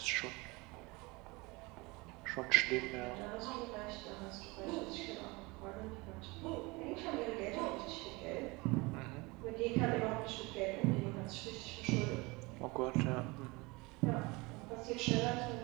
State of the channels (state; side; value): quieter; left; 24.8 dB